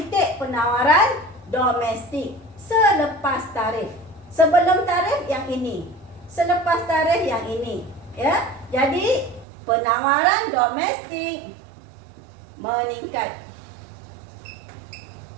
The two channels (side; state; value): left; drops out; at 9.5 s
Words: penawaran domestik selepas tarif. Sebelum tarif yang ini, selepas tarif yang ini. Ya, jadi penawaran domestik meningkat.